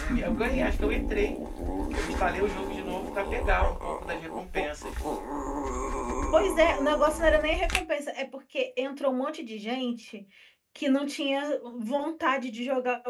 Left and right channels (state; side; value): identical; both; correlation 1.00